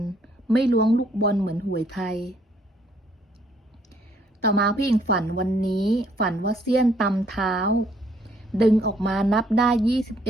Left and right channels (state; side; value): normal; both; correlation 0.66